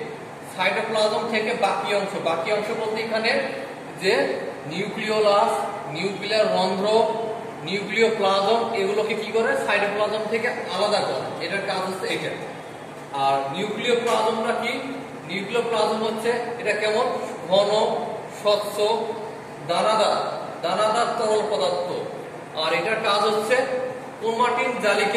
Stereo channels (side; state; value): both; identical; correlation 1.00